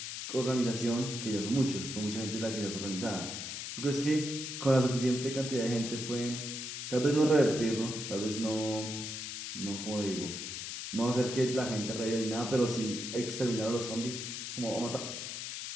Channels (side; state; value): left; noise; hiss, 6 dB below the sound